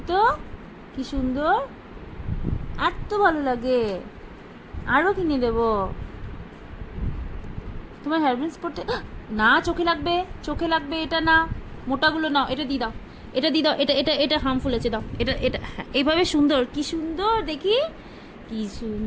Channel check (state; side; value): identical; both; correlation 1.00